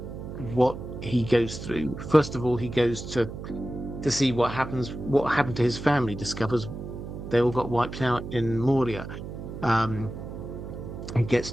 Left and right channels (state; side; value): noise; right; hum, 9 dB below the sound